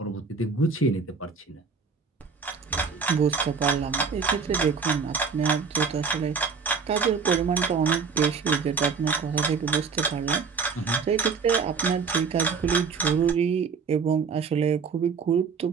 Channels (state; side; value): quieter; left; 5.4 dB